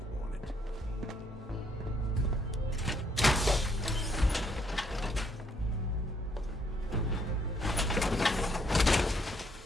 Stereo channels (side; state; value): both; normal; correlation 0.70